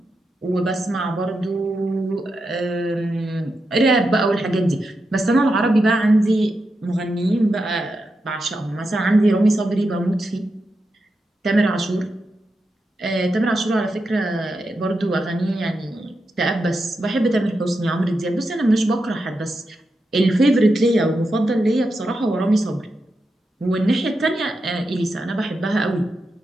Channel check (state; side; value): normal; both; correlation 0.87